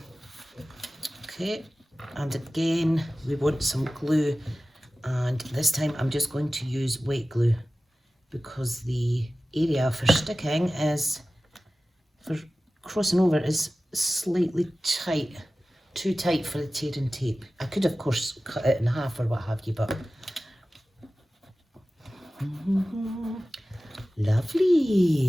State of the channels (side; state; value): both; normal; correlation 0.96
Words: okay, and again, we want some glue, and this time I'm just going to use wet glue because the area for sticking is, for crossing over, is slightly tight, too tight for the tearing tape. I could of course cut it in half or what have you, but